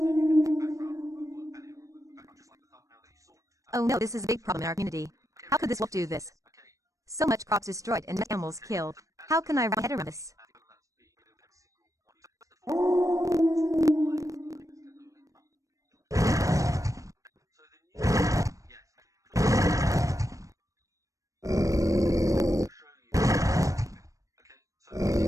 then you can do background removal and it will remove the background just like the thumbnail that you saw. Oh no, this is a big problem in our community. How could this wolf do this? Okay. So much crops destroyed and animals killed. How can I wrap my head around this? So the new yes. I'll show you. Okay. So this is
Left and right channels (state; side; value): late; left; 0.16 ms